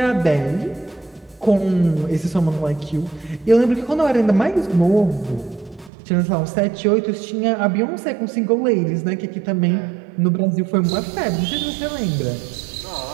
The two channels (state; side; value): drops out; left; at 5.9 s